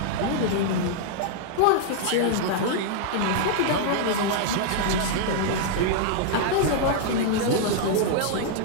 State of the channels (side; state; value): both; different; correlation -0.01